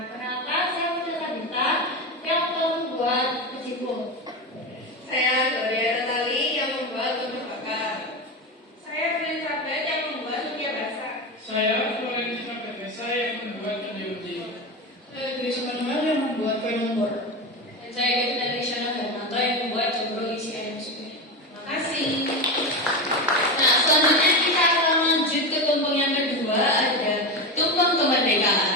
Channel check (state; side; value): normal; both; correlation 0.19